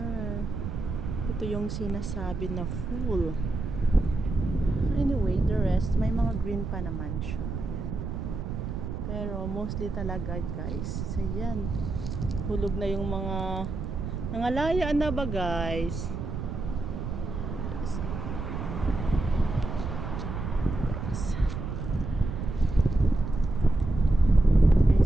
Ito yung sinasabi na full. Anyway, the rest, may mga green pa naman siya. Ayan. Pero mostly talaga guys, ayan. Hulog na yung mga nangalayaan na ba guys?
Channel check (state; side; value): noise; right; rumble, 5 dB below the sound